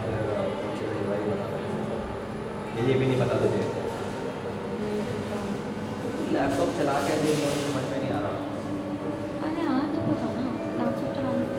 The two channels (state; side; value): identical; both; correlation 1.00